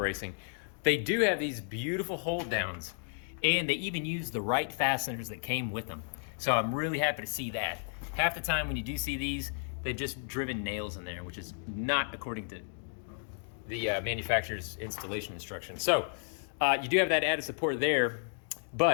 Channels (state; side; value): silent; right; 56 dB below the other